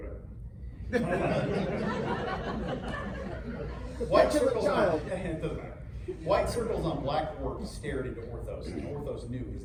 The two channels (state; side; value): identical; both; correlation 1.00